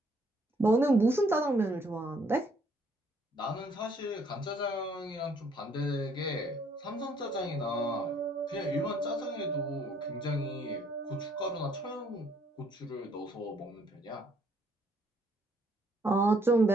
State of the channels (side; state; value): both; normal; correlation 0.65